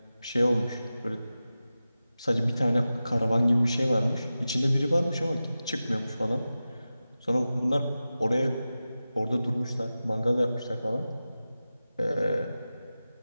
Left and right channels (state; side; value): inverted; both; correlation -0.94